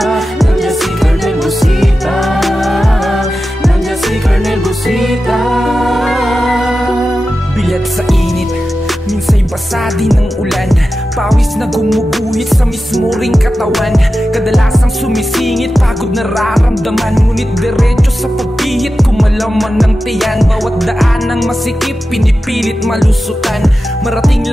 Nandiyan si Colonel Busita, nandiyan si Colonel Busita. Bilat sa init, minsa'y basa din ng ulan. Pawis na gumuguhit sa mismo ring katawan. Kadalasang sumisingit, pagod nararamdaman. Ngunit diretso sa pagpihit, kumalaman ng tiyan. Bawat daan ng masikip, pinipilit malusutan. Marating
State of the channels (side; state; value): both; normal; correlation 0.93